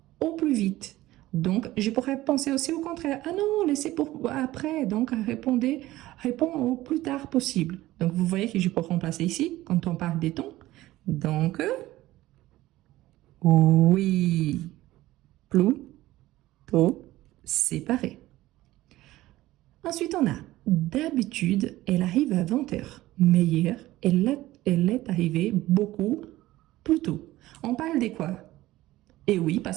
au plus vite. Donc, je pourrais penser aussi au contraire. Ah non, laissez pour après. Donc, réponds au plus tard possible. Donc, vous voyez que je peux remplacer ici quand on parle des tons. Donc, oui, plutôt séparé. Ensuite, on a d'habitude, elle arrive à 20h. Mais hier, elle est arrivée beaucoup plus tôt. On parle de quoi? Et oui,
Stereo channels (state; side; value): quieter; left; 16.6 dB